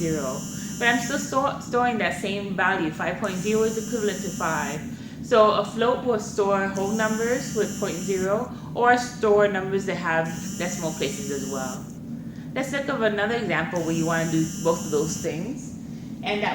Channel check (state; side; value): identical; both; correlation 1.00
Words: But I'm still storing that same value. 5.0 is equivalent to 5. So a float will store whole numbers with 0.0 or store numbers that have decimal places as well. Let's look at another example where you want to do both of those things, and